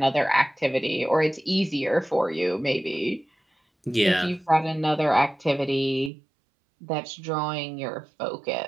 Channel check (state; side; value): drops out; left; at 6.1 s